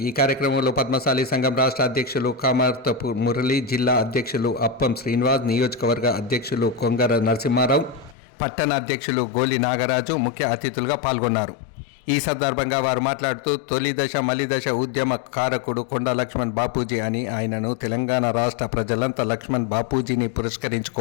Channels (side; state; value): right; drops out; at 8.2 s